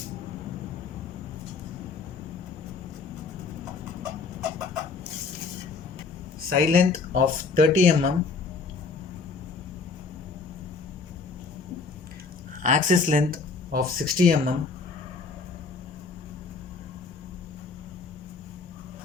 Side length of 30 mm. Axis length of 60 mm.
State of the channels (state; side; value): quieter; right; 4.6 dB